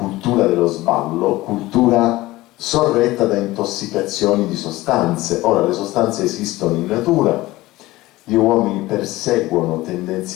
dello sballo, cultura sorretta da intossicazioni di sostanze. Ora, le sostanze esistono in natura, gli uomini perseguono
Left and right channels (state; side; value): quieter; right; 18.4 dB